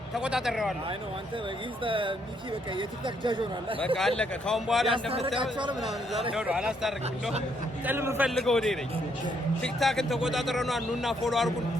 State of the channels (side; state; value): both; normal; correlation 0.72